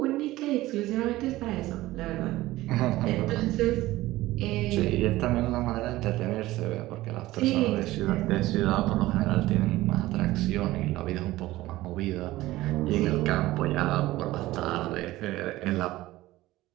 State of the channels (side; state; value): left; quieter; 17.2 dB